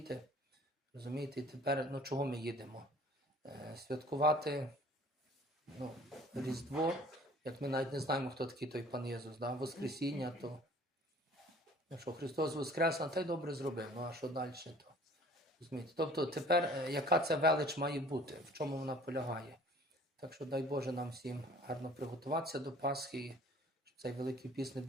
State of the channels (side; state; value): both; normal; correlation 0.50